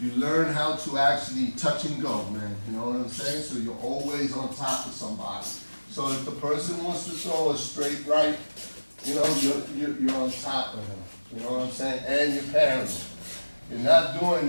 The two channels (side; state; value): both; inverted; correlation -1.00